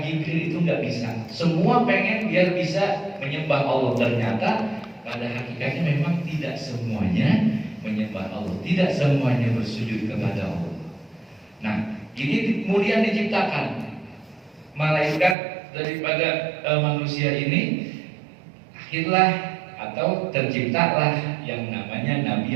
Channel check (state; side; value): drops out; left; at 15.4 s